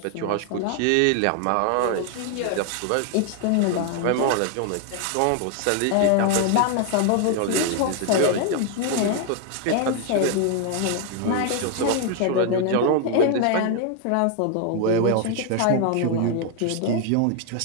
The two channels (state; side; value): different; both; correlation 0.00